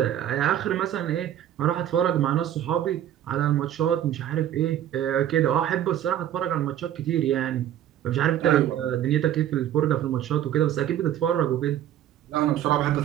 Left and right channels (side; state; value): left; quieter; 11.3 dB